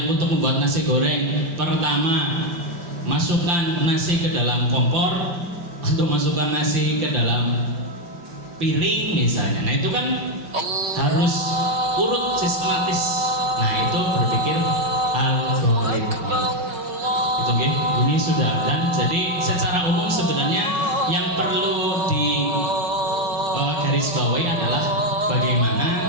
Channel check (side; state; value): left; late; 5.9 ms